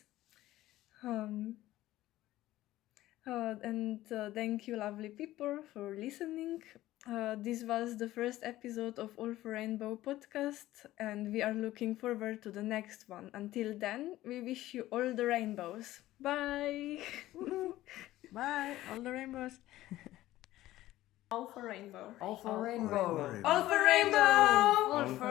And thank you, lovely people, for listening. This was the first episode of All for Rainbow podcast, and we are looking forward to the next one. Until then, we wish you all the rainbows. Bye! Bye, all the rainbows. All for rainbow. All for rainbow. All for rainbow. All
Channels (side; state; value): right; quieter; 15.5 dB